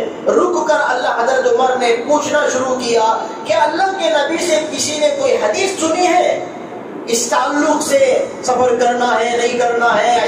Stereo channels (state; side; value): identical; both; correlation 1.00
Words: رک کر اللہ حضرت عمر نے پوچھنا شروع کیا کہ اللہ کے نبی سے کسی نے کوئی حدیث سنی ہے اس تعلق سے، سفر کرنا ہے نہیں کرنا ہے،